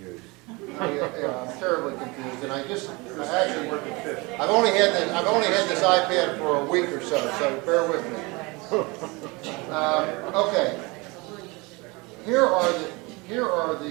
I'm terribly confused, and I've only had this iPad for a week or so bear with me. Okay. Here are the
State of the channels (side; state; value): left; quieter; 25.9 dB